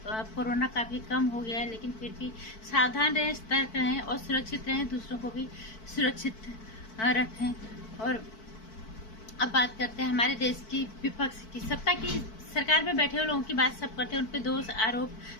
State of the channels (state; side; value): late; right; 4.5 ms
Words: कोरोना काफी कम हो गया है, लेकिन फिर भी सावधान रहें, सतर्क रहें और सुरक्षित रहें। दूसरों को भी सुरक्षित रखें। और अब बात करते हैं हमारे देश की विपक्ष की। सत्ता की सरकार में बैठे हुए लोगों की बात सब करते हैं, उन पे दोष आरोप